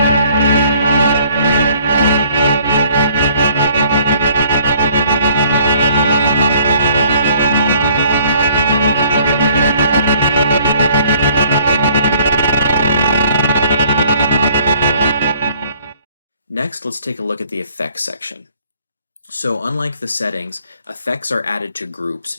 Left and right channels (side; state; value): both; inverted; correlation -0.59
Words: Next, let's take a look at the effects section. So unlike the settings, effects are added to groups,